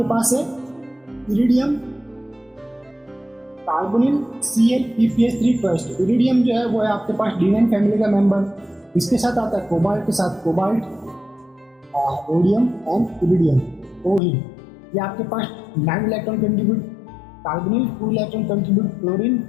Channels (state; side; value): drops out; right; at 14.2 s